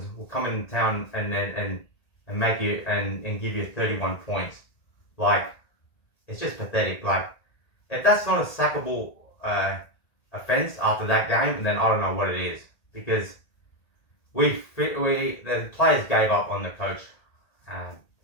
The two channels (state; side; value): late; right; 1.9 ms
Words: will come in town and make you and give you 31 points. It's just pathetic. If that's not a sackable offense after that game, then I don't know what it is. Because the players gave up on the coach.